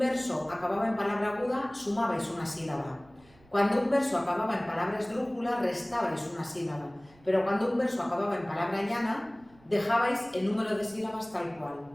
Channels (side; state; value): right; noise; rumble, 28 dB below the sound